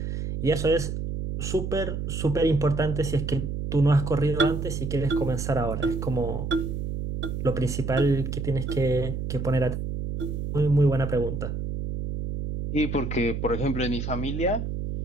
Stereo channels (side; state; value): right; noise; hum, 4 dB below the sound